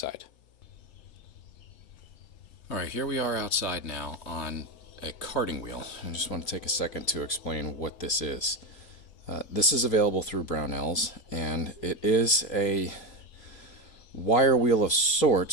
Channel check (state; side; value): late; right; 3.0 ms